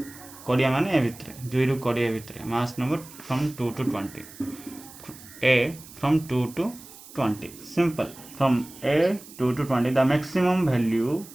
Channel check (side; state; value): right; noise; hiss, 18 dB below the sound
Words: कोडिया माने ए भितर 2 रु कोडिया भितर mass number from 2 to 20 a from 2 to 20 simple from a 2 to 20 the maximum value